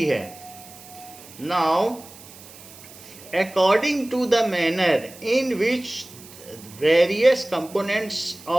है। Now according to the manner in which various components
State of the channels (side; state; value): right; noise; hiss, 19 dB below the sound